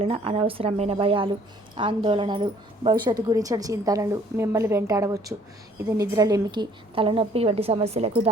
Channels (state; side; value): normal; both; correlation 0.59